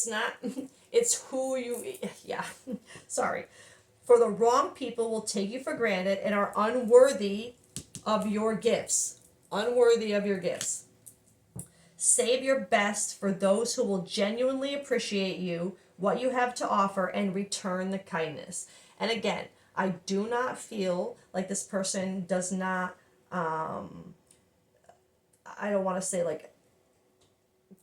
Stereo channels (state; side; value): identical; both; correlation 1.00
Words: not, it's who you, yeah. Sorry. For the wrong people will take you for granted and are unworthy of your gifts. Unworthy of your gifts. Save your best for those who will genuinely appreciate you, what you have to offer, and return the kindness. And again, I do not feel like this person does not, I don't want to say like,